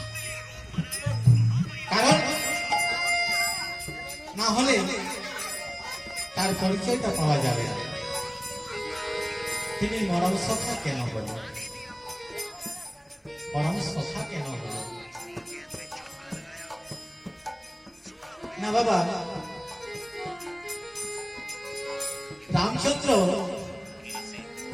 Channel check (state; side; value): identical; both; correlation 1.00